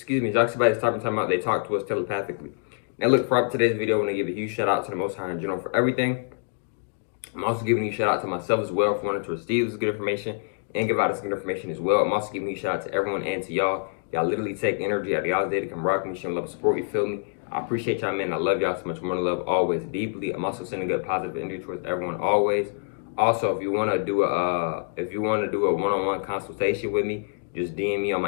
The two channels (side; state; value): right; silent; digital silence